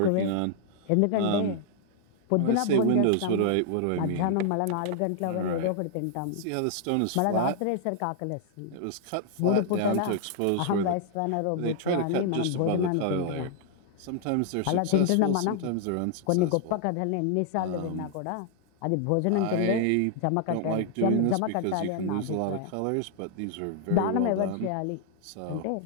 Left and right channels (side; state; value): both; different; correlation -0.01